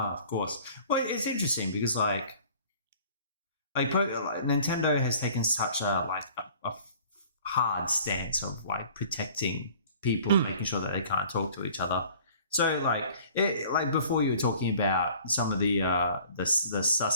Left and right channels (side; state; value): both; inverted; correlation -0.50